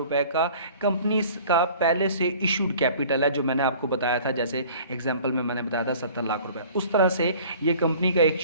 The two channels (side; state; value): both; inverted; correlation -0.48